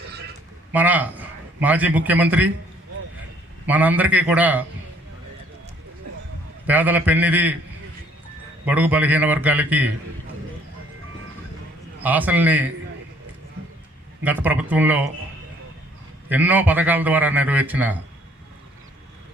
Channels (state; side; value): normal; both; correlation 0.60